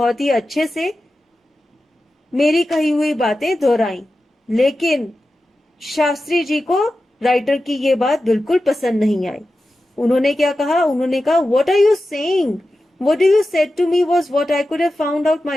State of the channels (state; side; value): normal; both; correlation 0.93